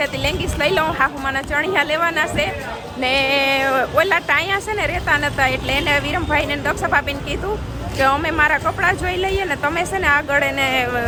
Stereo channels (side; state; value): both; identical; correlation 1.00